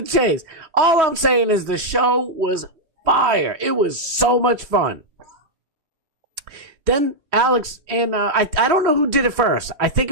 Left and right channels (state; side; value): late; left; 3.2 ms